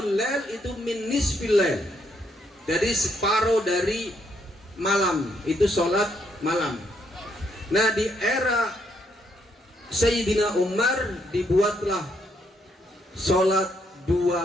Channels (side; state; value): both; normal; correlation 0.74